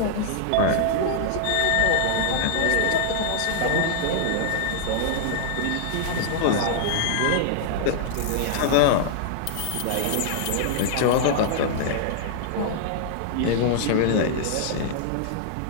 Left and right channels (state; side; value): different; both; correlation -0.01